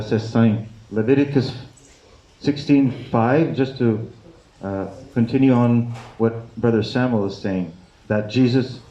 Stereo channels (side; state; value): both; identical; correlation 1.00